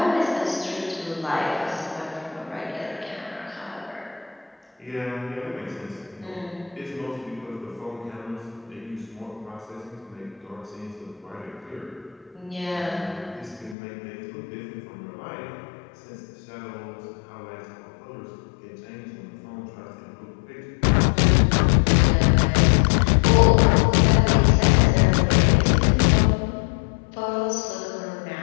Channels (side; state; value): right; drops out; at 13.8 s